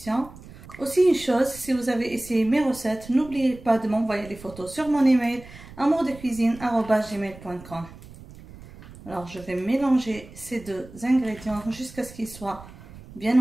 Aussi une chose, si vous avez essayé mes recettes, n'oubliez pas de m'envoyer les photos sur mon email amourdecuisine@gmail.com. Alors, je vais mélanger ces deux ingrédients jusqu'à ce qu'ils soient bien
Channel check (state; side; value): noise; right; rumble, 18 dB below the sound